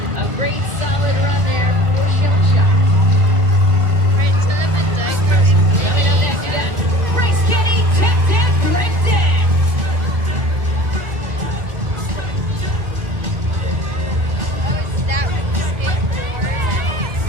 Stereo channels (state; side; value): late; left; 2.1 ms